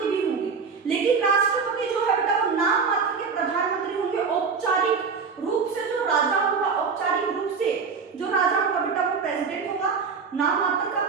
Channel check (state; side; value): quieter; left; 5.4 dB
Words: भी होंगे, लेकिन राष्ट्रपति जो है बेटा वो नाम मात्र के प्रधानमंत्री होंगे। औपचारिक रूप से जो राजा होगा, औपचारिक रूप से जो राजा होगा बेटा वो प्रेसिडेंट होगा, नाम मात्र का